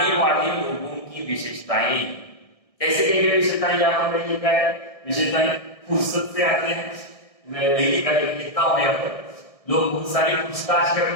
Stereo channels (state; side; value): late; right; 1.7 ms